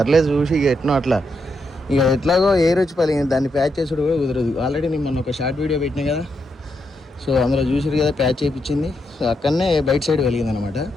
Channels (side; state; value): both; normal; correlation 0.81